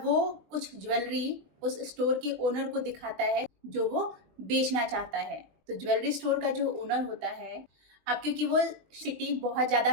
वो कुछ ज्वेलरी उस स्टोर के ओनर को दिखाता है जो वो बेचना चाहता है। तो ज्वेलरी स्टोर का जो ओनर होता है, अब क्योंकि वो सिटी बहुत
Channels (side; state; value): left; late; 21 ms